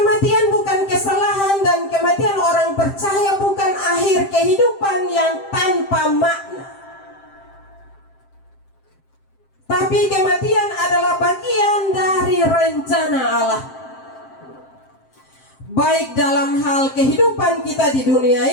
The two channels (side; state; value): right; late; 7.6 ms